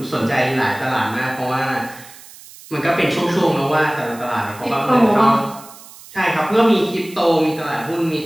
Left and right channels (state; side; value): noise; right; hiss, 20 dB below the sound